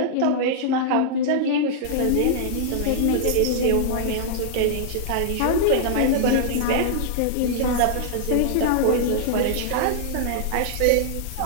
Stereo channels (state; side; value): different; both; correlation -0.01